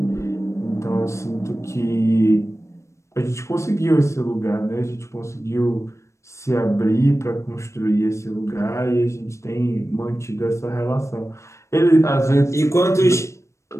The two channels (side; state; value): right; late; 0.14 ms